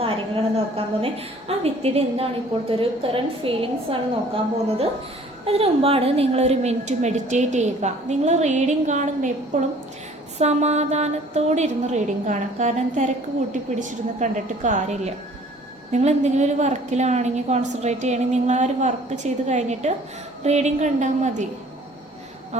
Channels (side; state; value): both; normal; correlation 0.53